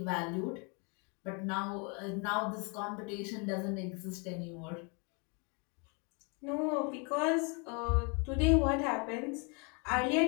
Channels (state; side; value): quieter; right; 34.0 dB